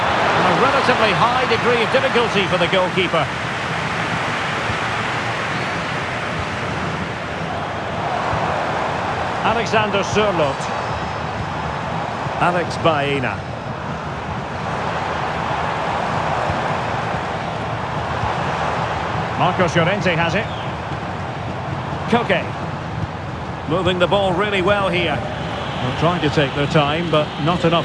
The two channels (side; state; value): both; identical; correlation 1.00